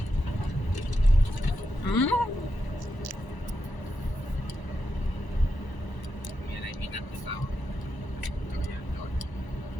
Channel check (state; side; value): late; right; 1.0 ms